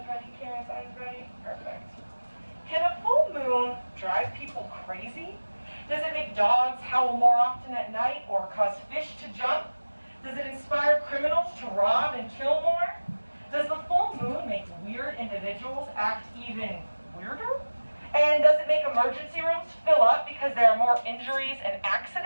ready, Karen's eyes ready. Perfect. Can a full moon drive people crazy? Does it make dogs howl more often at night or cause fish to jump? Does it inspire criminals to rob and kill more? Does the full moon make weird individuals act even weirder? And does it make emergency rooms fill up because there are more injuries and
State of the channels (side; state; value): both; inverted; correlation -1.00